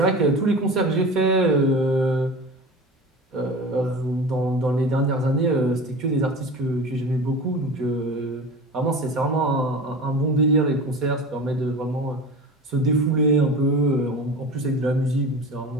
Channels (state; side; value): normal; both; correlation 0.33